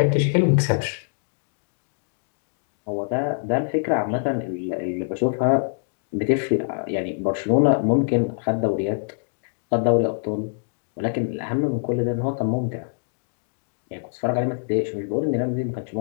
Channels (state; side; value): silent; right; digital silence